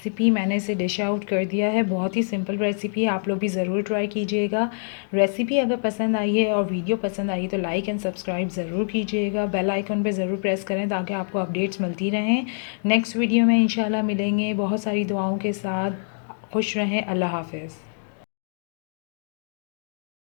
मैंने इसे डिश आउट कर दिया है। बहुत ही सिंपल रेसिपी है, आप लोग भी ज़रूर ट्राई कीजिएगा। रेसिपी अगर पसंद आई है और वीडियो पसंद आई है तो लाइक एंड सब्सक्राइब ज़रूर कीजिएगा। बेल आइकन पे ज़रूर प्रेस करें ताकि आपको अपडेट्स मिलती रहें। नेक्स्ट वीडियो में इंशाल्लाह मिलेंगे बहुत सारी दुआओं के साथ। खुश रहें। अल्लाह हाफ़िज़।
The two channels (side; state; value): right; silent; digital silence